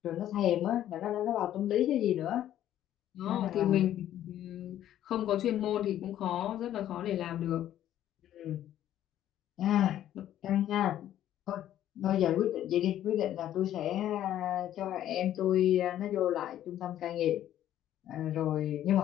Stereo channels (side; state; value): right; quieter; 11.9 dB